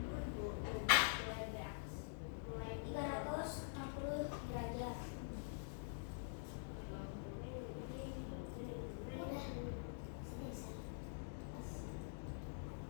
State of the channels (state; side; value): silent; right; digital silence